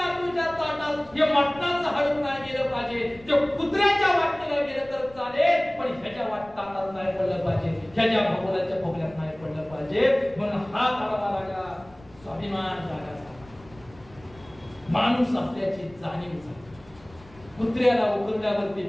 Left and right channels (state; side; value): noise; left; rumble, 24 dB below the sound